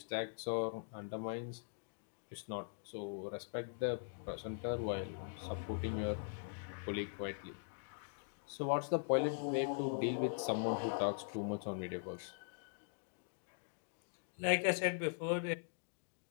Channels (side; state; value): right; silent; digital silence